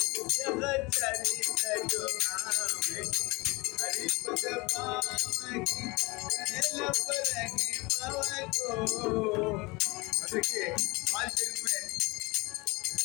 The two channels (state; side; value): quieter; right; 24.8 dB